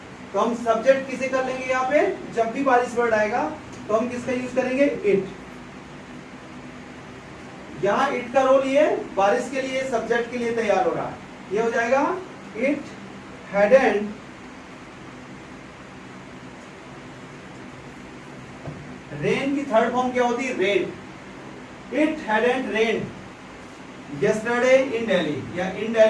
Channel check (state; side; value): identical; both; correlation 1.00